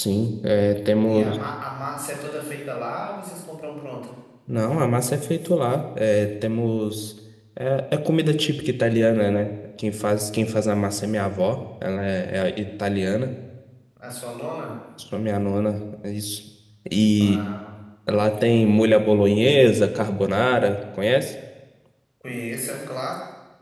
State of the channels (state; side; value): identical; both; correlation 1.00